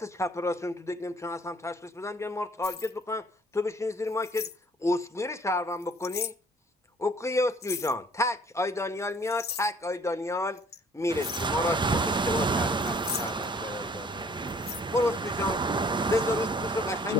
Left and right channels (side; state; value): both; normal; correlation 0.57